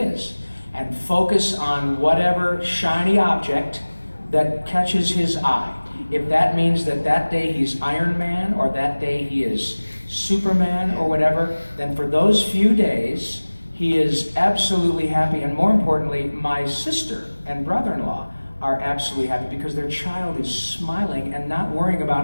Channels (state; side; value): inverted; both; correlation -1.00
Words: and focus on whatever shiny object that catches his eye. If that means that day he's Iron Man or that day he is Superman or whatever, then for those few days he is absolutely happy. And more importantly, my sister and brother-in-law are absolutely happy because their child is smiling and not worrying